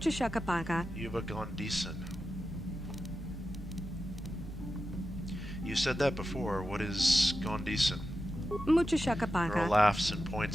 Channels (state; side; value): normal; both; correlation 0.91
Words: shakapaka. Yuba Gondison. You said that before. What is Gondison? Mucho Girl shakapaka. laughs and